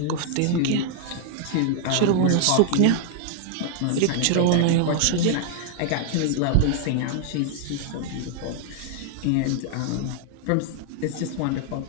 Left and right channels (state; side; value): different; both; correlation 0.00